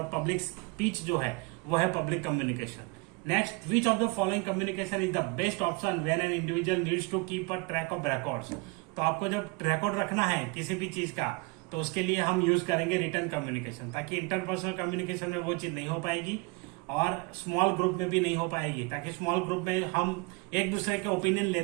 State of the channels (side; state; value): left; quieter; 27.8 dB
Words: पब्लिक स्पीच जो है वो है public communication. Next, which of the following communication is the best option when an individual needs to keep a track of records? तो आपको जब रिकॉर्ड रखना है किसी भी चीज का तो उसके लिए हम यूज करेंगे रिटन कम्युनिकेशन, ताकि इंटरपर्सनल कम्युनिकेशन में वो चीज नहीं हो पाएगी और स्मॉल ग्रुप में भी नहीं हो पाएगी। ताकि स्मॉल ग्रुप में हम एक दूसरे के ओपिनियन